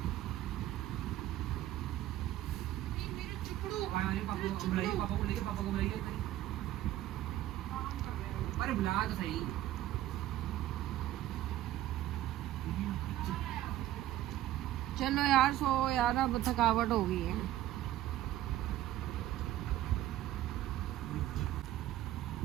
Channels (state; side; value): quieter; left; 13.9 dB